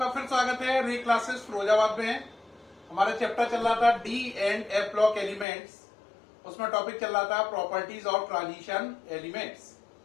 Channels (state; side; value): drops out; right; at 5.5 s